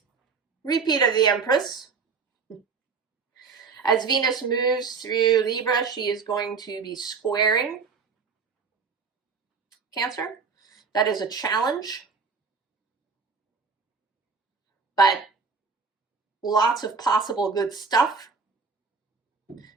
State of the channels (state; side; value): quieter; left; 5.1 dB